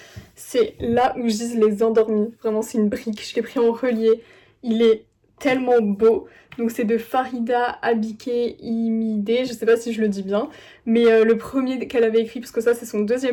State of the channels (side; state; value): both; identical; correlation 1.00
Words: c'est Là où gisent les endormis. Vraiment c'est une brique, je l'ai pris en relié. Il est tellement beau. Donc c'est de Farida Abike Imide, je sais pas si je le dis bien, mais le premier qu'elle avait écrit, parce que ça c'est son